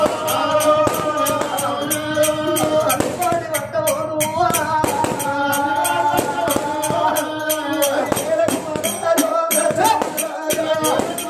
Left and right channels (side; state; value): both; identical; correlation 1.00